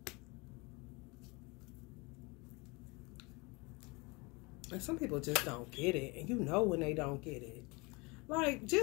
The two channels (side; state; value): right; quieter; 26.8 dB